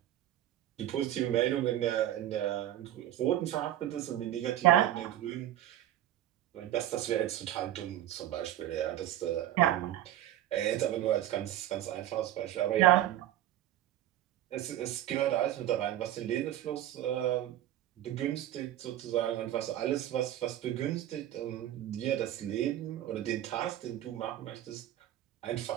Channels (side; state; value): left; quieter; 12.9 dB